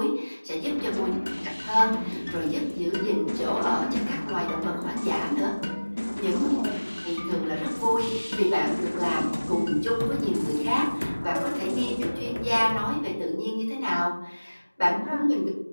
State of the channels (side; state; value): both; inverted; correlation -1.00